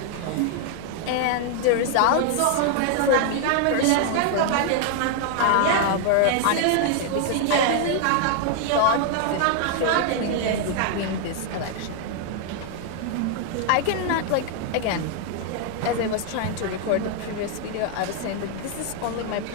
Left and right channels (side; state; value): both; different; correlation 0.00